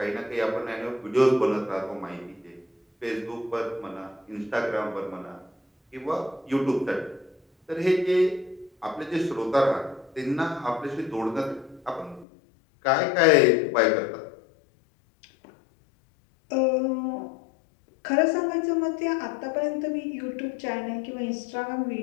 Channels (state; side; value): drops out; right; at 12.2 s